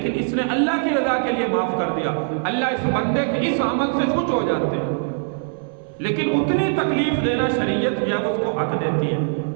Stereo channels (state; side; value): silent; left; digital silence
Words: اس نے اللہ کی رضا کے لیے معاف کر دیا، اللہ اس بندے کے اس عمل سے خوش ہو جاتے ہیں۔ لیکن اتنی تکلیف دینا شریعت جب اس کو حق دیتی ہے،